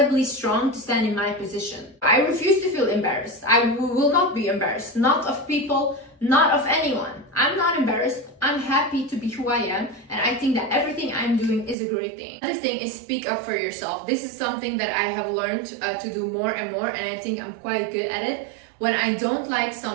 strong to stand in my position. I refuse to feel embarrassed. I will not be embarrassed, not of people, not of anyone. I'm not embarrassed. I'm happy to be who I am, and I think that everything I'm doing is a great thing. Another thing is speak up for yourself. This is something that I have learned to do more and more, and I think I'm quite good at it. When I don't like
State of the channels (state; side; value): drops out; left; at 11.8 s